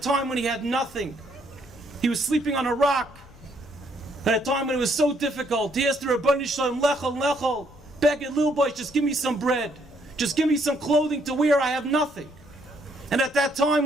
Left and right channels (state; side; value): noise; left; rumble, 23 dB below the sound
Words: when he had nothing, he was sleeping on a rock. At a time when it was so difficult, he asked the Rabbi Shalom, Lechol, Lechol, beg it, little boy, just give me some bread. Just give me some clothing to wear, I have nothing. And at that time